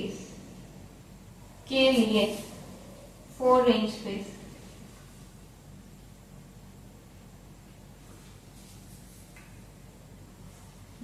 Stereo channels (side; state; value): both; identical; correlation 1.00